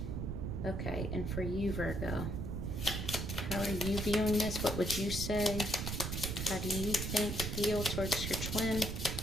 Okay, and for you, Virgo, how are you viewing this? What would you say? How do you think, feel towards your twin?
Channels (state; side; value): noise; right; rumble, 3 dB below the sound